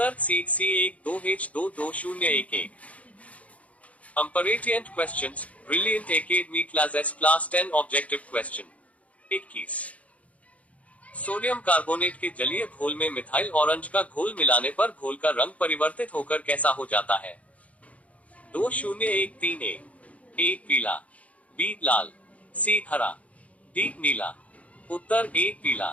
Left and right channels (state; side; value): late; right; 0.067 ms